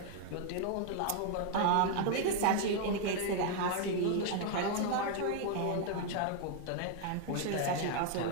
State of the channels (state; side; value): different; both; correlation 0.00